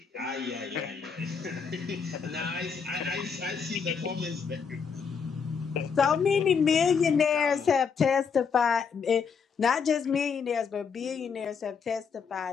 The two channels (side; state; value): right; quieter; 6.1 dB